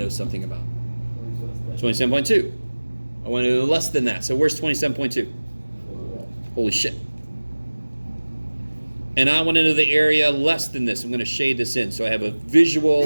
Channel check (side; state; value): both; inverted; correlation -1.00